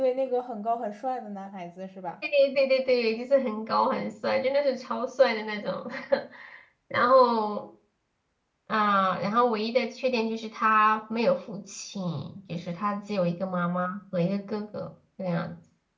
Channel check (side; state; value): both; identical; correlation 1.00